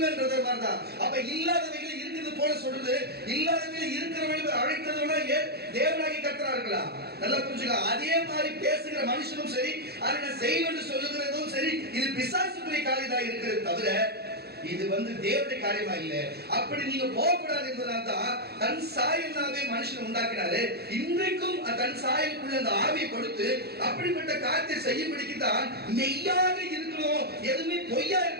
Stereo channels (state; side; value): late; left; 0.47 ms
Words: மாதிரிதான். அப்ப இல்லாதவைகள் இருக்குது போல சொல்றது, இல்லாதவைகள் இருக்கிறவர்கள் அழைத்ததோட தேவனாகி கர்த்தரா இருக்கலாம். நல்லா புரிஞ்சுக்க. அதே மாதிரி பேசுகிற மனுஷனும் சரி, அதை நான் செய்வேன் சொல்லுகிறதும் சரி, இது பிசாசுக்குரிய காரியமாக இருக்கிறது தவிர இது தேவனுடைய காரியமா இல்ல. அப்படி நீங்க போகக்கூடாது என்பதனால தான் தன் சாயலாவே மனுஷன் உண்டாக்கினாரு. இன்றைக்கும் தன் சாயலுக்குள்ள அந்த ஆவியை கொடுத்து அப்படிப்பட்ட காரியத்தை செய்யும்படிக்கு தான் மெய்யாக இருக்கணும், எதுவுமே பொய்யா